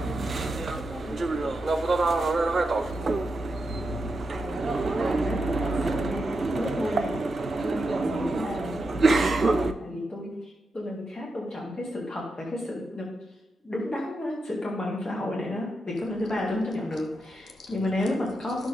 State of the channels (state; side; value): normal; both; correlation 0.86